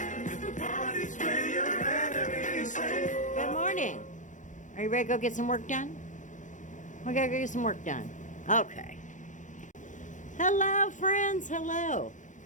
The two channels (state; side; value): late; right; 0.36 ms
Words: Good morning. Are you ready to go get some work done? We gotta go get some work done. Okay. Hello, friends. Hello.